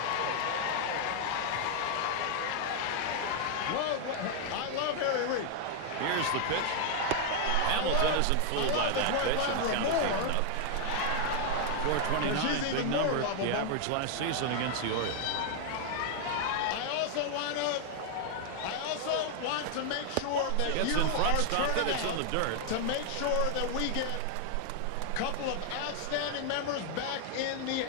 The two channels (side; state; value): both; different; correlation 0.00